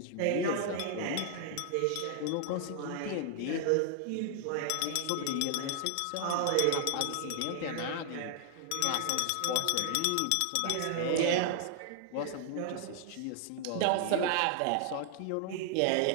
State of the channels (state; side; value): different; both; correlation 0.00